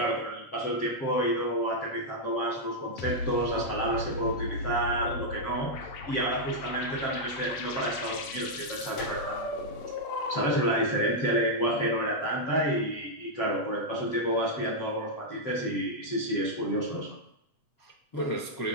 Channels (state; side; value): late; right; 8.5 ms